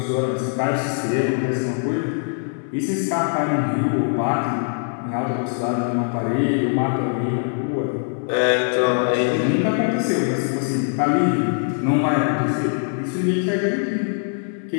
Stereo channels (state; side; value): silent; right; 58 dB below the other